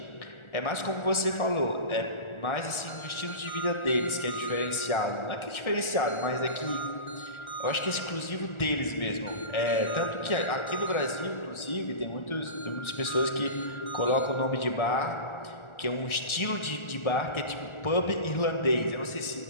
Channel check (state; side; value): late; right; 1.4 ms